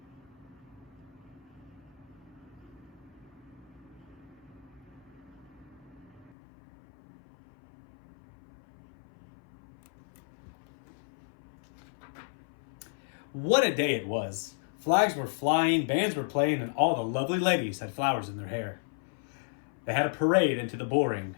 What a day it was. Flags were flying, bands were playing, and all the lovely ladies had flowers in their hair. They had a parade into the bull ring.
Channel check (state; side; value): drops out; right; at 6.3 s